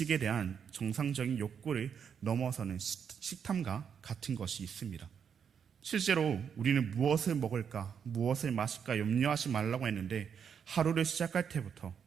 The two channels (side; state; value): left; quieter; 7.4 dB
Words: 대한 정상적인 욕구를 넘어서는 식탐과 같은 것이 있습니다. 실제로 우리는 무엇을 먹을까, 무엇을 마실까 염려하지 말라고 했는데 하루를 시작할 때부터